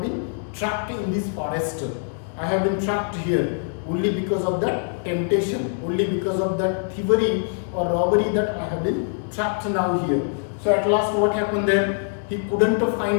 been trapped in this forest. I have been trapped here only because of that temptation, only because of that thievery or robbery, that I have been trapped now here. So at last what happened there? He couldn't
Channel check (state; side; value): silent; right; 63 dB below the other